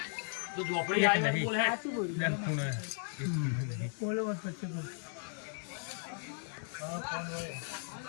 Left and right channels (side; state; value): right; silent; 54 dB below the other